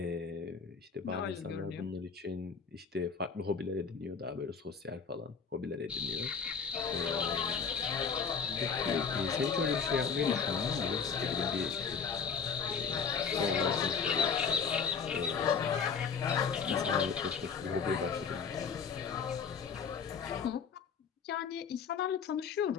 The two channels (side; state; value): right; quieter; 6.0 dB